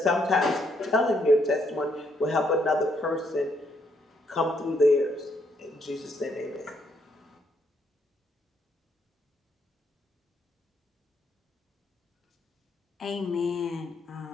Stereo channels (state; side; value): normal; both; correlation 0.73